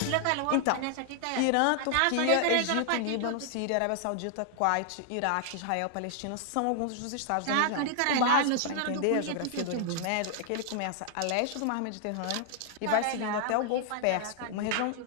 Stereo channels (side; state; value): both; different; correlation 0.00